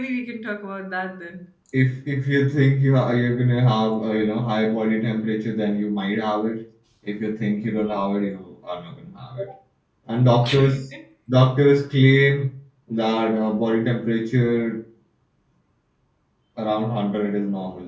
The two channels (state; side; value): identical; both; correlation 1.00